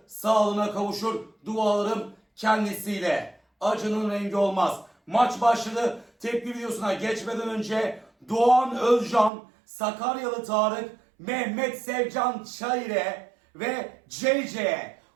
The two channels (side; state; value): left; drops out; at 9.3 s